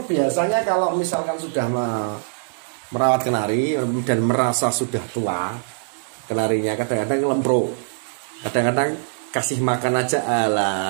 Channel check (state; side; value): silent; left; digital silence